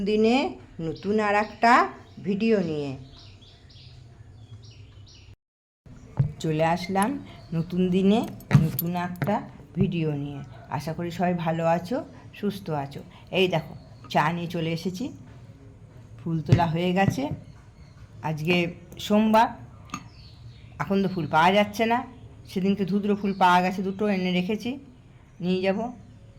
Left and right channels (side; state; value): both; identical; correlation 1.00